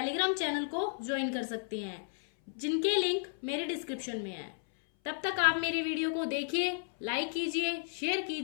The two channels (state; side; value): silent; right; 56 dB below the other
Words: चैनल को ज्वाइन कर सकते हैं, जिनके लिंक मेरे डिस्क्रिप्शन में है। तब तक आप मेरी वीडियो को देखिए, लाइक कीजिए, शेयर